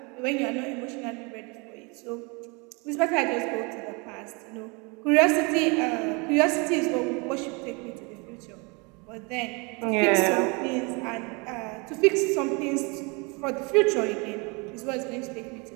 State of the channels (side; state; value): left; quieter; 29.9 dB